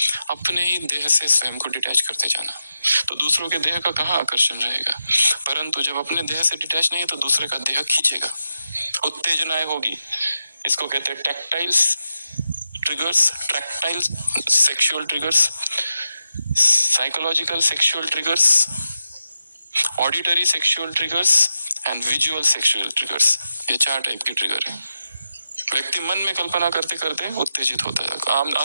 अपने ही देह से स्वयं को डिटैच करते जाना, तो दूसरों के देह का कहाँ आकर्षण रहेगा। परंतु जब अपने देह से डिटैच नहीं है तो दूसरे का देह खींचेगा, उत्तेजनाएं होगी। इसको कहते हैं tactiles triggers, tactile sexual triggers, psychological sexual triggers, auditory sexual triggers and visual sexual triggers. ये 4 टाइप के ट्रिगर हैं। व्यक्ति मन में कल्पना करते करते उत्तेजित होता है,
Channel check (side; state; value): both; inverted; correlation -0.87